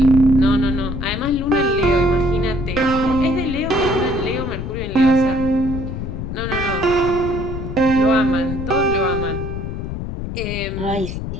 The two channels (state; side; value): noise; left; rumble, 6 dB below the sound